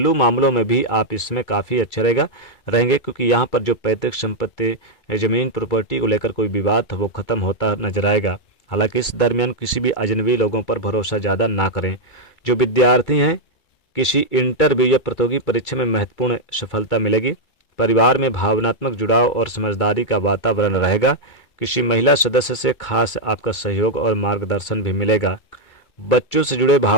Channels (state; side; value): late; right; 2.3 ms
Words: मामलों में भी आप इसमें काफ़ी अच्छे रहेंगे, क्योंकि यहाँ पर जो पैतृक संपत्ति, ज़मीन, प्रॉपर्टी को लेकर कोई विवाद था वो खत्म होता नजर आएगा। हालांकि इस दरमियान किसी भी अजनबी लोगों पर भरोसा ज़्यादा ना करें। जो विद्यार्थी हैं, किसी इंटरव्यू या प्रतियोगी परीक्षा में महत्वपूर्ण सफलता मिलेगी। परिवार में भावनात्मक जुड़ाव और समझदारी का वातावरण रहेगा। किसी महिला सदस्य से खास आपका सहयोग और मार्गदर्शन भी मिलेगा। बच्चों से जुड़े